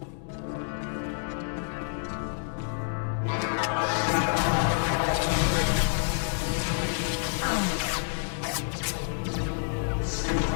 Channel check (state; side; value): silent; right; digital silence